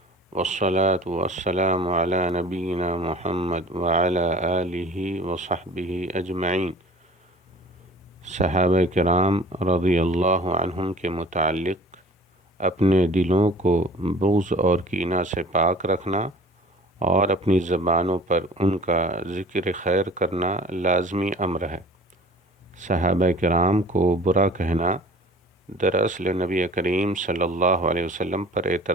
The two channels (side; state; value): both; normal; correlation 0.46